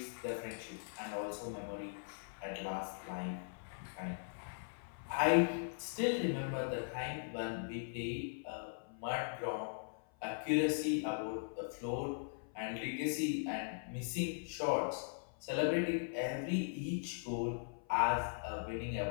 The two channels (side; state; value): right; silent; 51 dB below the other